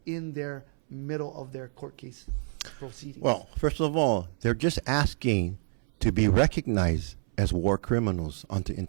in their middle of their court case proceedings? Well, first of all, they're just asking to be recognized as war criminals under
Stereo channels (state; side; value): silent; left; 59 dB below the other